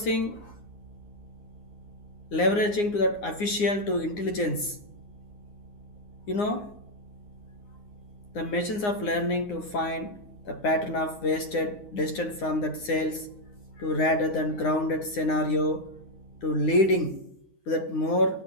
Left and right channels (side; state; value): right; late; 9.7 ms